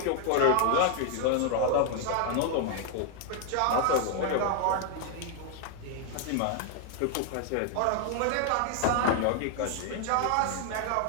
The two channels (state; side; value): different; both; correlation 0.00